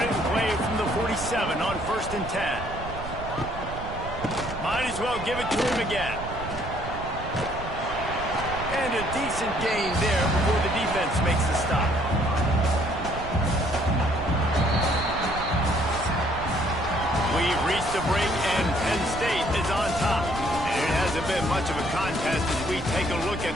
it in play from the 47 on 1st and 10. Might as well give it to him again. And And a decent gain there before the defense makes the stop. We've reached the break, and Penn State is on top. And it hasn't been much of a contest as we take a look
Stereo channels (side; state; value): right; noise; rumble, 9 dB below the sound